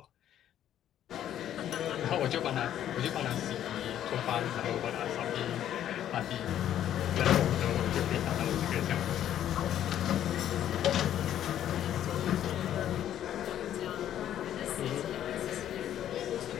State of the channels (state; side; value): quieter; right; 11.0 dB